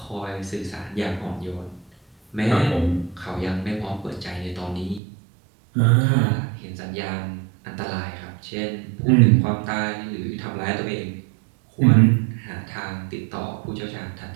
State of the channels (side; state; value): left; drops out; at 5.0 s